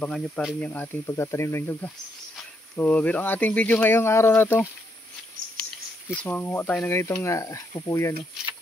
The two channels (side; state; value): both; normal; correlation 0.76